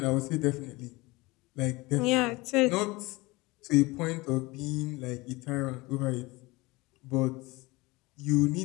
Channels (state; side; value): quieter; right; 22.7 dB